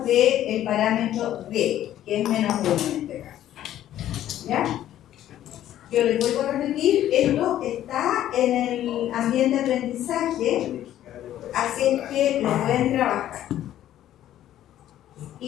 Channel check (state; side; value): quieter; right; 12.3 dB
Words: del parámetro D, que es menos 1 en este caso. ¿Ya? Yo les vuelvo a repetir, esto está en el ambiente de aprendizaje, así es que lo pueden trabajar.